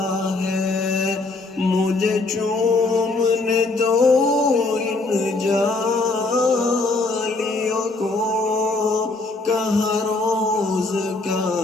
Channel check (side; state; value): right; quieter; 3.4 dB